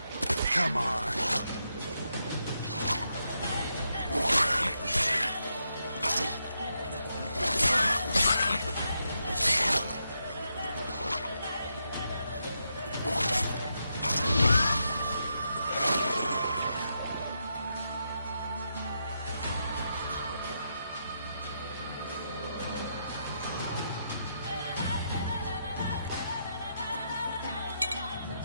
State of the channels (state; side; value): inverted; both; correlation -0.82